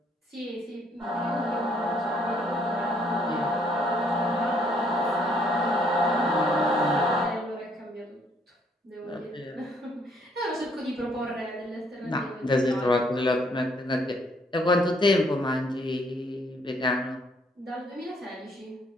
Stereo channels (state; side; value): normal; both; correlation 0.67